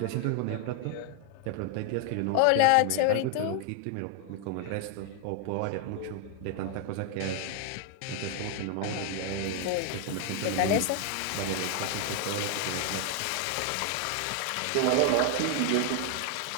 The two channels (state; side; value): different; both; correlation 0.00